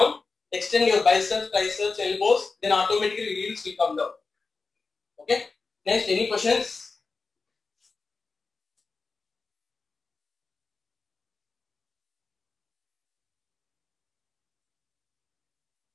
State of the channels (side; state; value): right; quieter; 4.2 dB